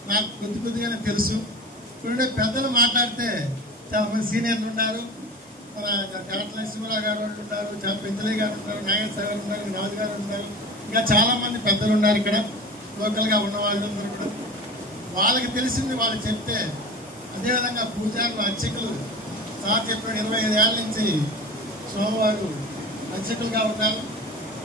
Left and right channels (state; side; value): normal; both; correlation 0.33